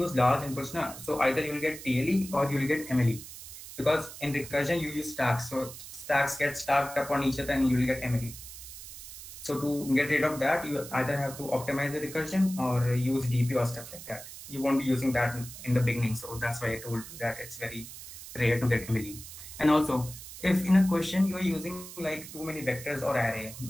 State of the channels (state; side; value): noise; right; hiss, 13 dB below the sound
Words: large inputs now, so either you will get TLE or you will get MLE. Because in recursion you use stacks, so stacks get stacked up on each other and you will get MLE. So to get rid of that, you either have to optimize the recursion or use DP or stuff like that. You won't be using that in the beginning, so that's why I told you that it's very rare to get MLE. And also, if in a question you are using like too many vectors or array,